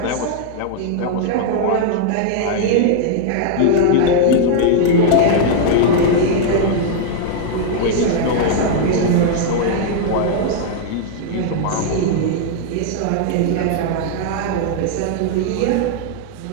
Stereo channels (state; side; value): different; both; correlation 0.00